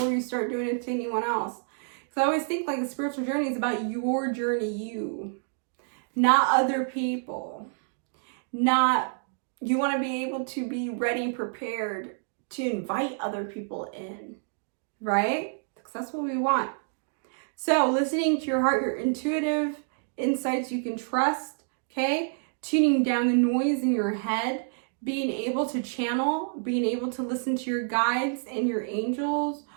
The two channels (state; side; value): silent; left; digital silence